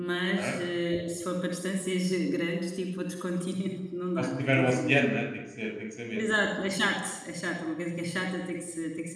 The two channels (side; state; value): both; identical; correlation 1.00